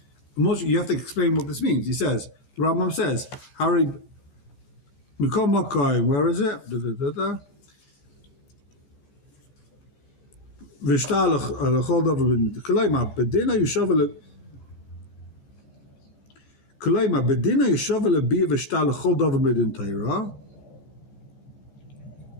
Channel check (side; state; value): right; late; 15 ms